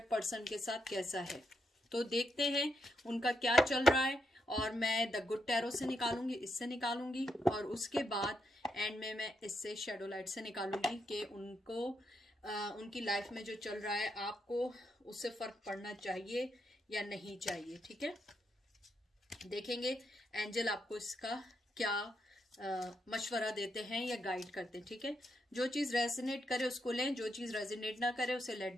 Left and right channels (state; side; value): normal; both; correlation 0.80